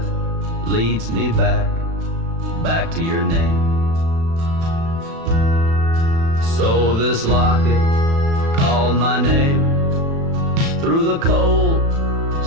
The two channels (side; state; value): left; late; 36 ms